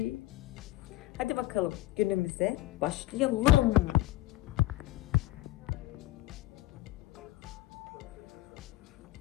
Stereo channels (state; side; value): quieter; right; 16.7 dB